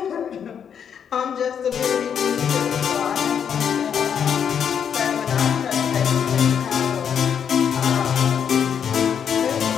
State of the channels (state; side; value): quieter; right; 7.9 dB